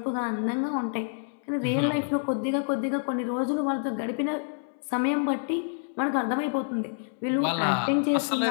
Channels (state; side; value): silent; right; 60 dB below the other